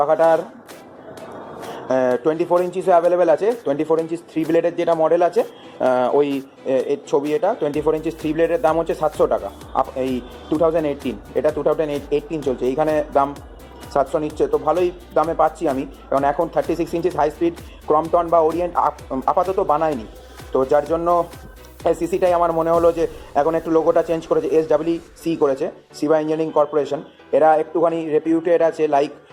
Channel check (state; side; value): identical; both; correlation 1.00